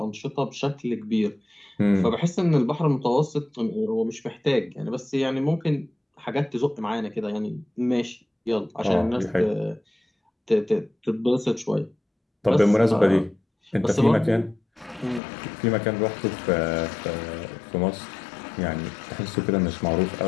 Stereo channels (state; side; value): drops out; right; at 15.2 s